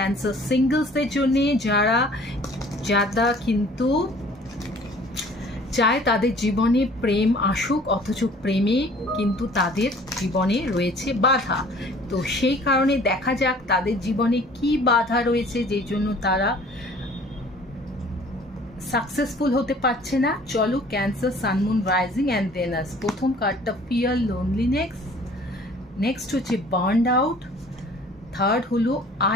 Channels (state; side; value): normal; both; correlation 0.51